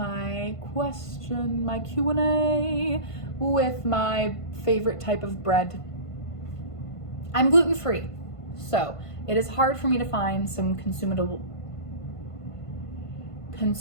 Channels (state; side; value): late; right; 1.5 ms